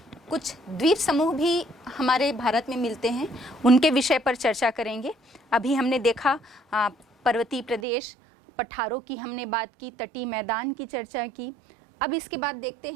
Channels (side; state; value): left; drops out; at 7.9 s